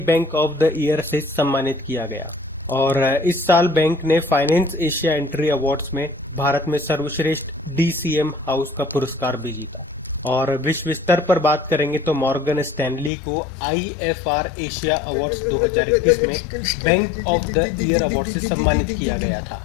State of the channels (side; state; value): right; drops out; at 13.1 s